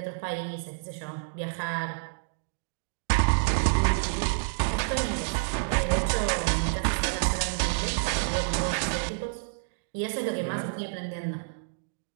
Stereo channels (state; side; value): silent; left; digital silence